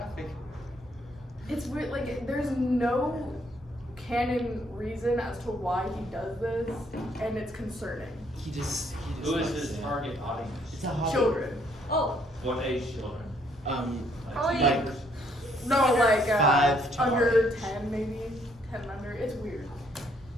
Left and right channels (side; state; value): both; normal; correlation 0.68